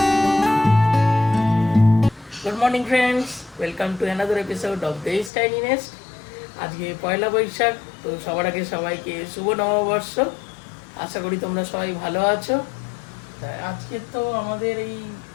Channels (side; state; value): right; drops out; at 5.3 s